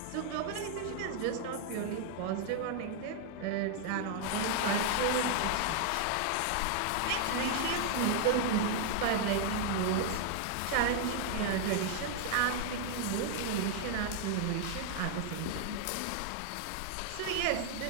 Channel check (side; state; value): both; different; correlation 0.00